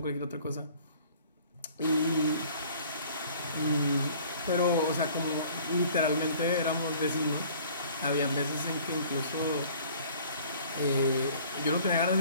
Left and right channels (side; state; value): both; inverted; correlation -0.52